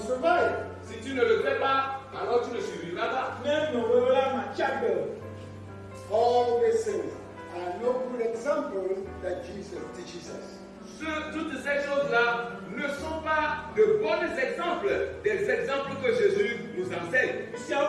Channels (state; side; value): identical; both; correlation 1.00